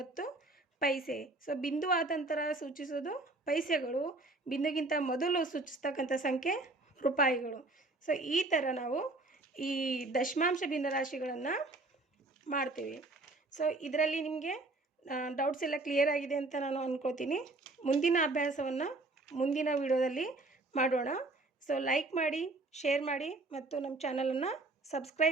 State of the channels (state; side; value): quieter; left; 3.1 dB